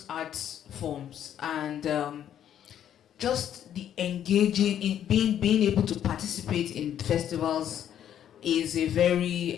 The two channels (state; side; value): quieter; right; 10.2 dB